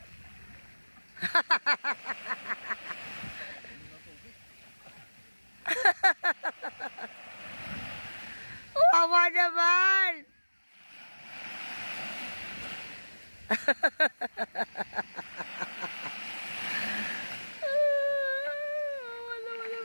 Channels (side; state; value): both; inverted; correlation -1.00